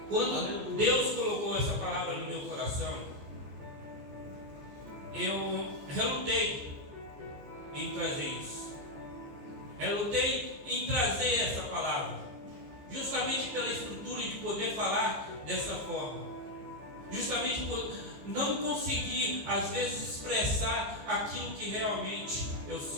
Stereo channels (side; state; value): left; late; 15 ms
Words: quando Deus colocou essa palavra no meu coração, eu relutei em trazer isso. Relutei em trazer essa palavra, justamente pela estrutura de poder falar dessa forma, justamente por não conseguir às vezes expressar aquilo que realmente eu